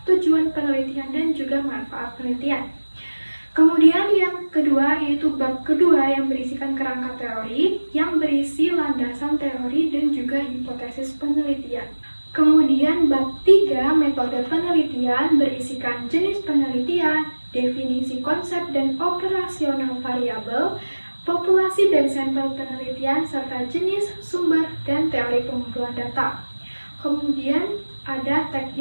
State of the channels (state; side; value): inverted; both; correlation -1.00